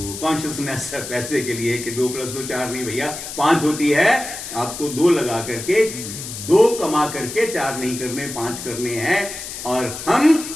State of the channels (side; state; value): left; noise; hiss, 9 dB below the sound